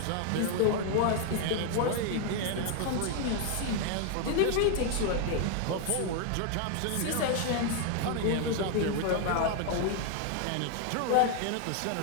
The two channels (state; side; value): different; both; correlation 0.00